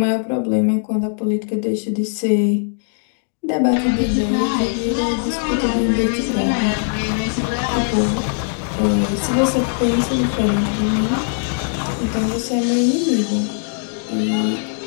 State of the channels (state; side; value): silent; right; digital silence